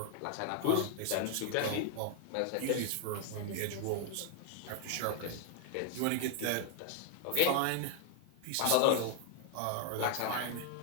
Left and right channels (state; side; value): different; both; correlation 0.00